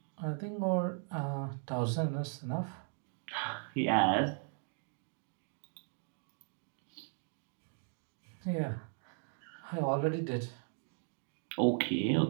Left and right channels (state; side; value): silent; left; 53 dB below the other